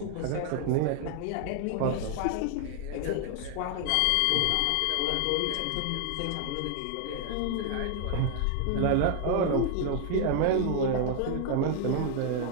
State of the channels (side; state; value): both; different; correlation 0.00